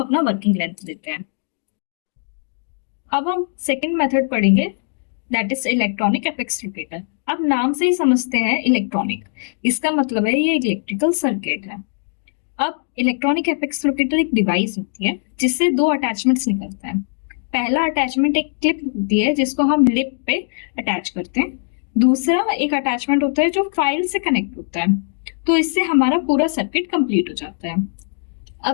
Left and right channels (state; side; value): silent; right; digital silence